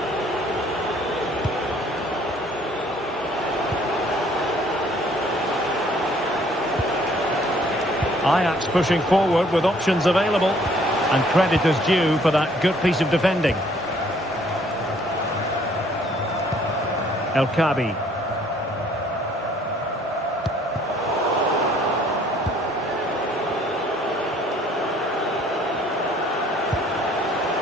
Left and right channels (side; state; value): both; normal; correlation 0.60